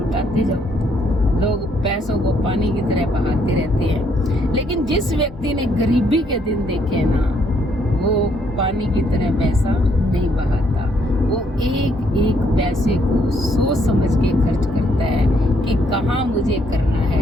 जाओ। लोग पैसों को पानी की तरह बहाते रहते हैं, लेकिन जिस व्यक्ति ने गरीबी के दिन देखे ना, वो पानी की तरह पैसा नहीं बहाता। वो एक एक पैसे को सोच समझ के खर्च करता है कि कहाँ मुझे करना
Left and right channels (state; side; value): normal; both; correlation 0.70